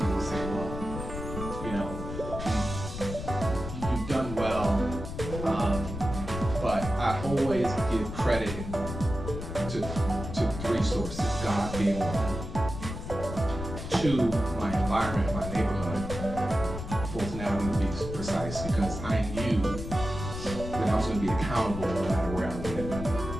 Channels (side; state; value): left; noise; rumble, 7 dB below the sound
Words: will say, well, you've done well, but I always give credit to 3 sources, God being one. 2, my environment, my neighborhood, Fulton Avenue to be precise, because I knew that I was going to be accountable no matter where I lived.